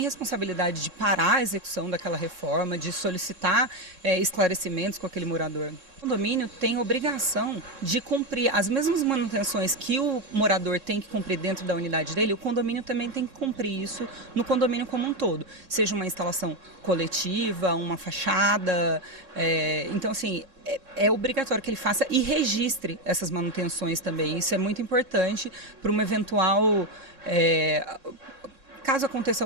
responsabilidade de parar a execução daquela reforma, de solicitar esclarecimentos com aquele morador. O condomínio tem obrigação de cumprir as mesmas manutenções que o morador tem que cumprir dentro da unidade dele, o condomínio também tem que cumprir isso no condomínio como um todo. Seja uma instalação coletiva, uma fachada. Então, assim, é obrigatório que ele faça e registre essas manutenções também. Isso é muito importante para uma eventual... caso aconteça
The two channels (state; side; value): late; left; 3.6 ms